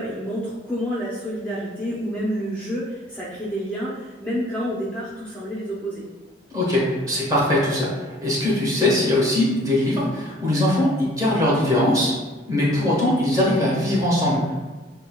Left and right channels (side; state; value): both; normal; correlation 0.54